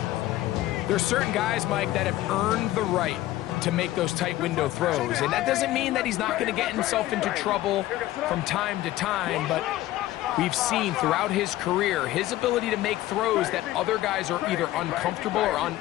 There's certain guys, Mike, that have earned the right to make those tight window throws. And that doesn't mean that he's not going to get himself into trouble from time to time, but we've seen throughout his career his ability to make throws that other guys are either uncomfortable or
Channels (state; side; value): quieter; right; 15.5 dB